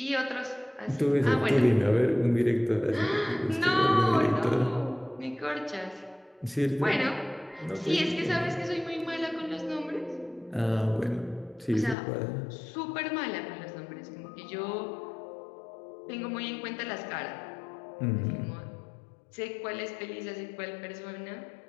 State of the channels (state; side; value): drops out; right; at 12.0 s